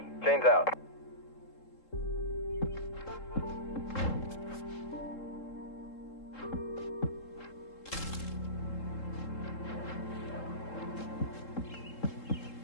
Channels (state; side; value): late; right; 3.7 ms